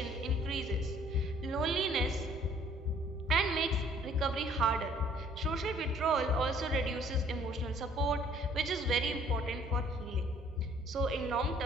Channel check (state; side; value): normal; both; correlation 0.59